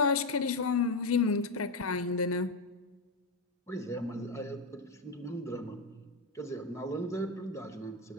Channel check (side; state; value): right; quieter; 3.2 dB